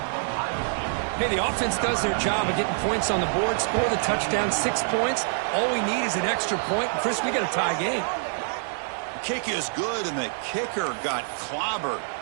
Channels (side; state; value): left; silent; digital silence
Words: Hey, the offense does their job of getting points on the board, score the touchdown, 6 points. All we need is an extra point. Chris, we got a tie game. Kick is good, and the kicker got clobbered.